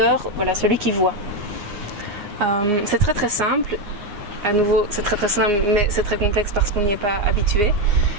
voilà, celui qui voit. C'est très très simple. À nouveau, c'est très très simple, mais c'est très complexe parce qu'on n'y est pas habitué.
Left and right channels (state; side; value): late; left; 9.8 ms